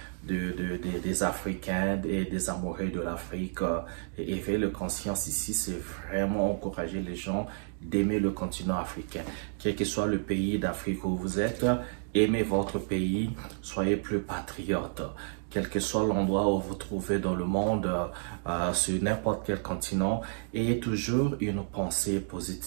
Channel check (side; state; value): left; silent; digital silence